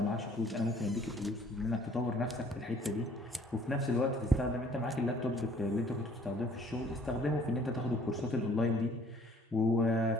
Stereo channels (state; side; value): normal; both; correlation 0.57